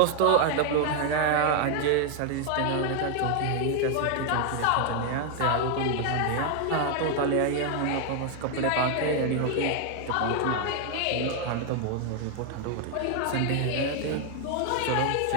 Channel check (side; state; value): both; different; correlation 0.01